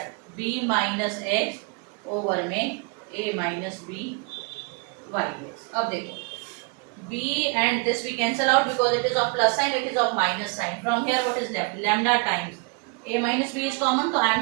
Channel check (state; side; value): quieter; left; 31.7 dB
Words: b minus x over में a minus b y x. अब देखो b and this we cancel out because it is of plus sign, it is of minus sign. From here what is left, lambda times a minus b is common, तो I